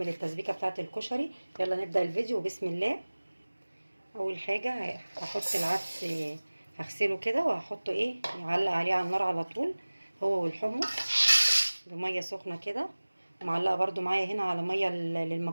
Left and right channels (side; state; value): both; inverted; correlation -1.00